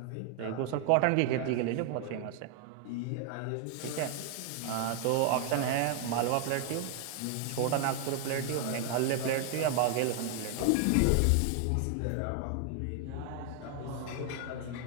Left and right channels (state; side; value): different; both; correlation 0.00